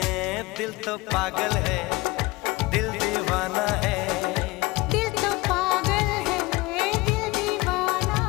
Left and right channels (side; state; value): right; quieter; 22.3 dB